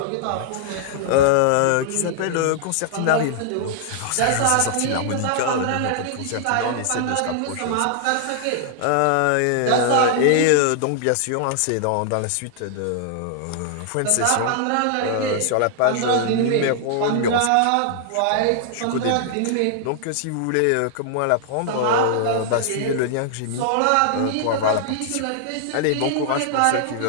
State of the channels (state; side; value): different; both; correlation -0.01